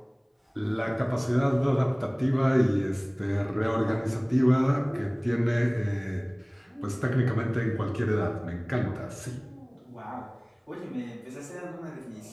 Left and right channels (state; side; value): identical; both; correlation 1.00